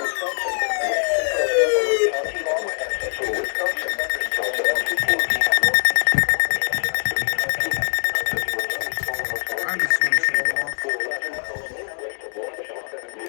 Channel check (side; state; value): right; silent; digital silence